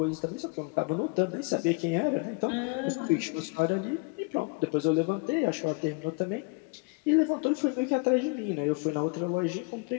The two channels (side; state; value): right; quieter; 30.8 dB